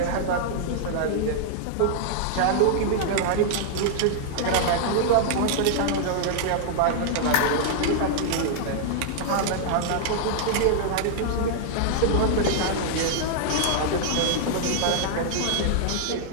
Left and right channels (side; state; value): both; different; correlation -0.01